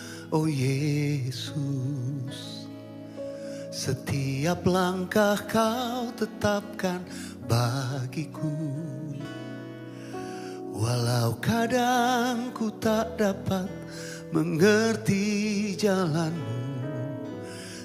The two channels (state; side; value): identical; both; correlation 1.00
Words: oh Yesus. Setiap langkah Kau tetapkan bagiku. Walau kadang ku tak dapat mengerti jalan-Mu,